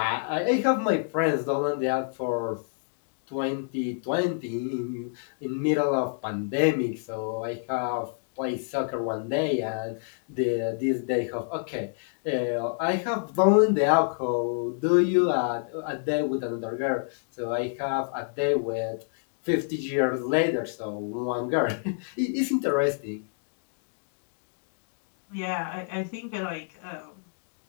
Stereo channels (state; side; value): silent; right; digital silence